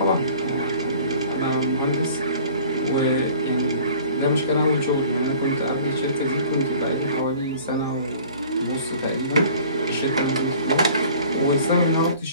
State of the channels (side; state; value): both; inverted; correlation -0.48